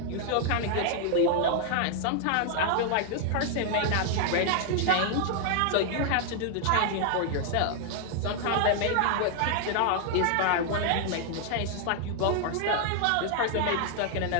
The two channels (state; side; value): different; both; correlation 0.00